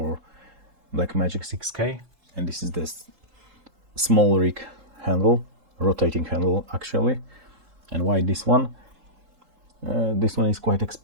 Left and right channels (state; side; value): late; left; 3.8 ms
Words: Blackmagic 6K, and this is the SmallRig handle, rotating handle actually. And why this one? This one is quite